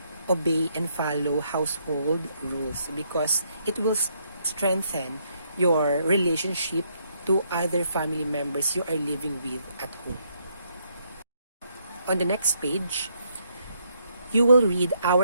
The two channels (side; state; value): both; inverted; correlation -0.73